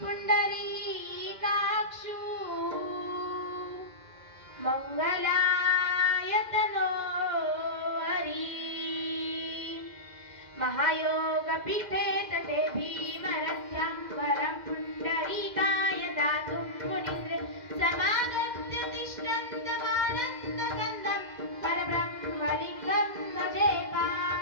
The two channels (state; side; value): late; left; 2.0 ms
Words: पुंडरीकाक्षु मंगलायतनो हरी महायोग पीठे तटे भीमरथ्यं वरं पुंडरीकाय दातुं मुनीन्द्र समागत्य तिष्ठन्तमानन्दकन्दं परब्रह्मलिङ्गं भजे